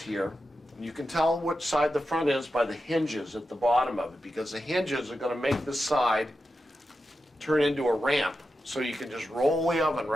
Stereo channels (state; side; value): normal; both; correlation 0.90